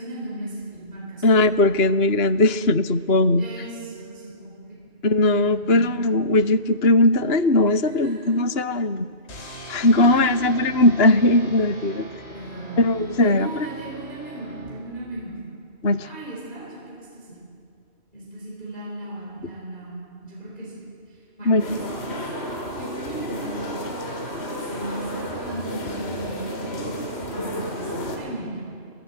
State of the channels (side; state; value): right; late; 2.9 ms